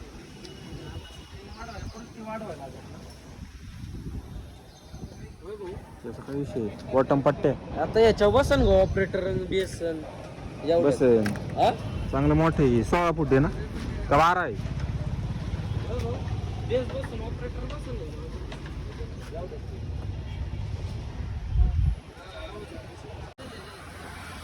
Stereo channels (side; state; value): both; identical; correlation 1.00